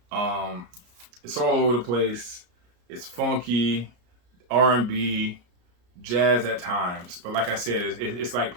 It's all over the place. It's funky, R&B, jazz at times. But like I said, it's like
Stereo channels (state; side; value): late; left; 34 ms